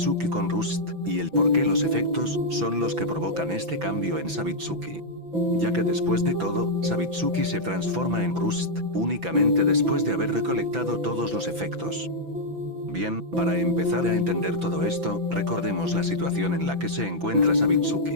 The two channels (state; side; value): late; left; 6.0 ms